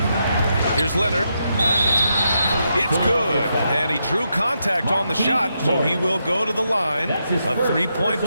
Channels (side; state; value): both; inverted; correlation -0.83